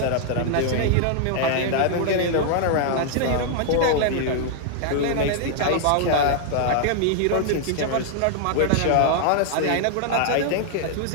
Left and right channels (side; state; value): both; different; correlation -0.01